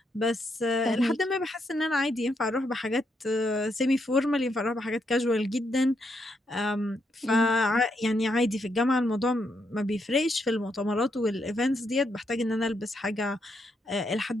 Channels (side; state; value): both; normal; correlation 0.79